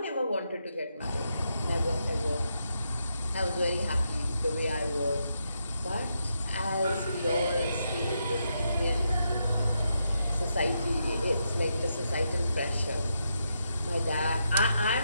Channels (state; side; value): inverted; both; correlation -0.82